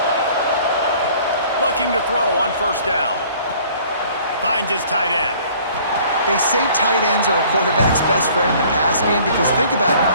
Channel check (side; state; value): both; inverted; correlation -0.54